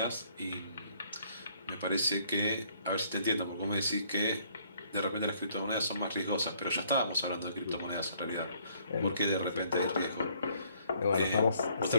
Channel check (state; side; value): inverted; both; correlation -0.64